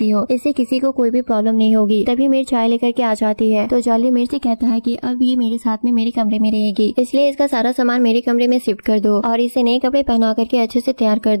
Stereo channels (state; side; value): inverted; both; correlation -1.00